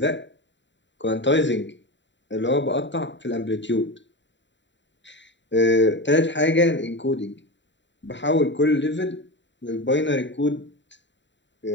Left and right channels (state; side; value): late; right; 0.53 ms